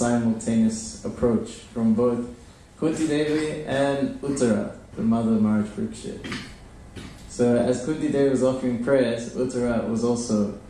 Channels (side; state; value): both; identical; correlation 1.00